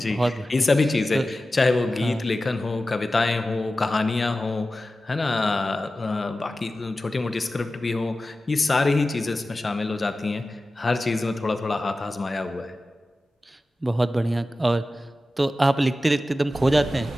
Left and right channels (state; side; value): normal; both; correlation 0.94